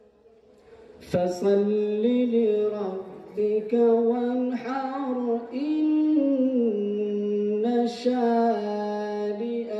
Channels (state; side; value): identical; both; correlation 1.00